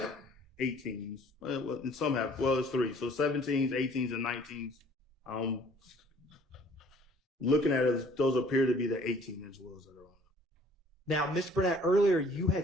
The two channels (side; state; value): both; normal; correlation 0.55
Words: 18s. Well, and some have, well, it's 3. So 17s, 18s, and 19s. Looking at it, those appear to be the 18-inch wheels that are on. Now, Mr. Burnett, earlier you